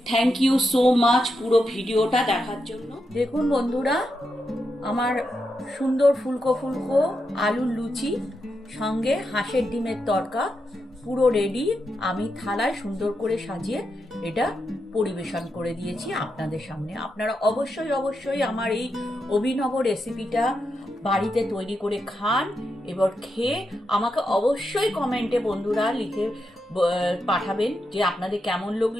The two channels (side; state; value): both; normal; correlation 0.85